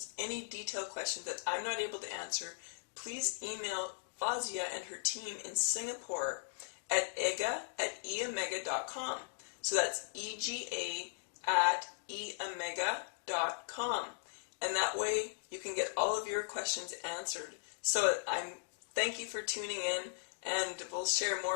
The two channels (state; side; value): silent; right; digital silence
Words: any detailed questions that I'm not able to answer, please email Fazia and her team in Singapore at ega@eamega.com. So that's EGA@eamega.com. And that way you can get all of your questions answered. So thank you for tuning in, and we'll share